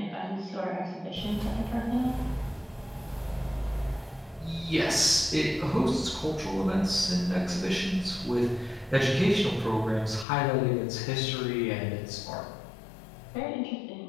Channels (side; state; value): right; drops out; at 10.2 s